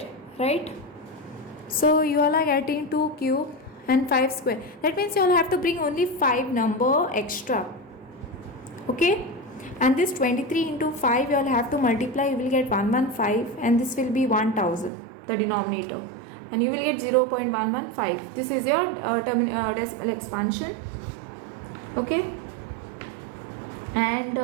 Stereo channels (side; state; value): left; drops out; at 14.9 s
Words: right? So you all are getting 2 cube and 5 square. That means you all have to bring only 5 number extra. Okay, and this 23 into 5 you all have to multiply, you will get 115, and this will be 1000, the denominator, and you will get 0.115. This is your decimal expansion. Okay, and